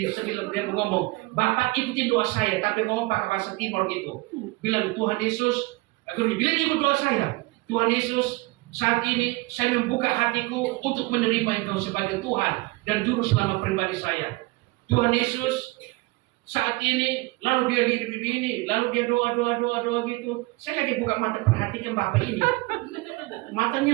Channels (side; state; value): left; quieter; 22.9 dB